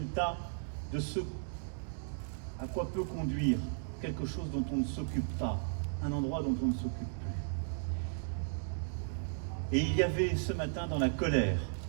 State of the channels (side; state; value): left; silent; digital silence